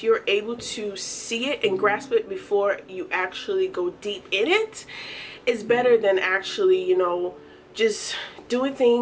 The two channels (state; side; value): identical; both; correlation 1.00